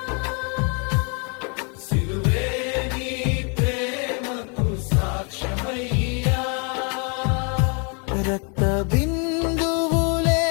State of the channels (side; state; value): right; quieter; 36.6 dB